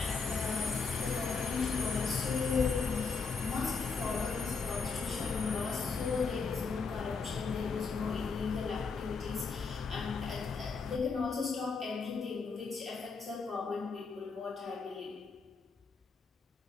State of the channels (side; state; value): right; quieter; 4.9 dB